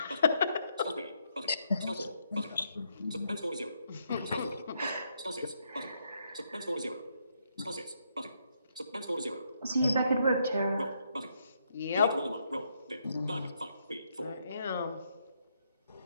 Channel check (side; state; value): both; inverted; correlation -0.76